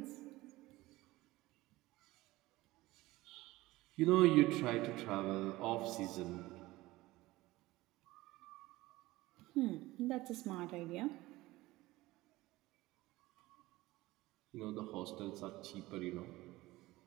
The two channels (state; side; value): quieter; left; 18.8 dB